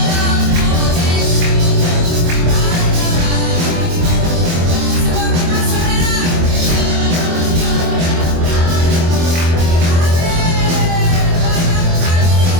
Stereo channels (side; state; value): left; late; 24 ms